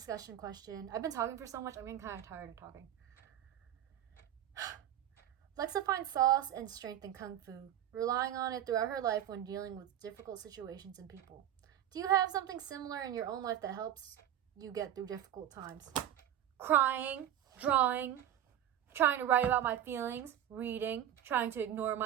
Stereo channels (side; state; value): left; quieter; 11.2 dB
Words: question. I've been talking for so much, I'm getting kind of tired of talking. Lexa finds solace and strength in Kung Fu, relying on it throughout her life when dealing with difficult situations and people. Do you have something similar in your own life that helps you get through difficult times? Crying, drawing, trying to write about my feelings, reading, trying to ignore